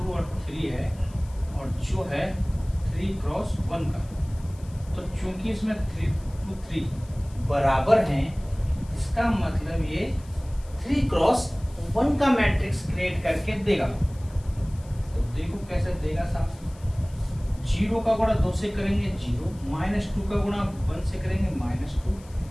और 3 है, और जो है 3 क्रॉस 1 का। तो चूंकि इसमें 3 2 3 बराबर हैं, इसका मतलब ये 3 क्रॉस 1 का मैट्रिक्स क्रिएट करके देगा। तो देखो कैसे देगा साहब। 0 का गुणा 2 से करेंगे 0, -2 का गुणा 1 से करेंगे -2,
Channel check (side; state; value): left; noise; hiss, 25 dB below the sound